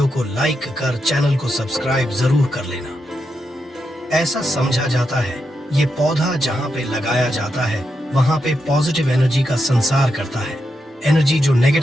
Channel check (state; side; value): normal; both; correlation 0.85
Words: को लाइक कर चैनल को सब्सक्राइब जरूर कर लेना। ऐसा समझा जाता है ये पौधा जहाँ पे लगाया जाता है वहाँ पे पॉजिटिव एनर्जी का संसार करता है। एनर्जी जो